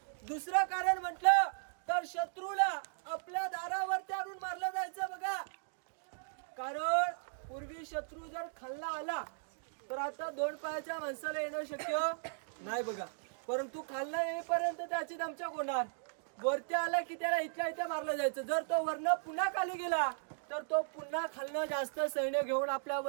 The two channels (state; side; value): silent; left; digital silence